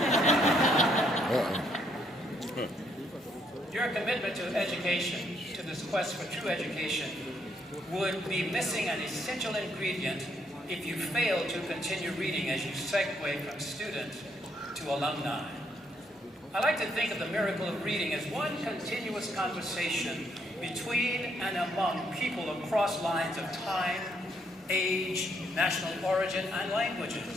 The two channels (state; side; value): normal; both; correlation 0.72